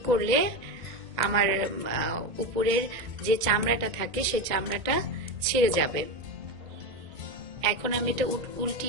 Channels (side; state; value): left; late; 1.9 ms